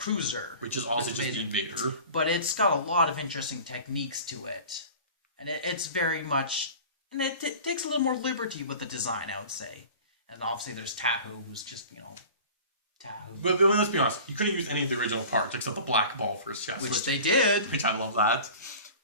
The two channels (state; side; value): inverted; both; correlation -0.40